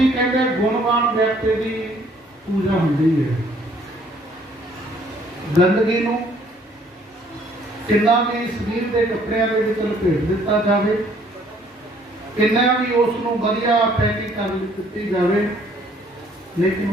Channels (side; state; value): both; normal; correlation 0.61